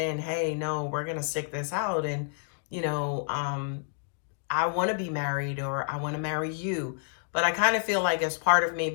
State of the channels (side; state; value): right; silent; 58 dB below the other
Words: hey, no, we're going to stick this out. And, you know, I want to be married or I want to marry you. But I kind of feel like as part of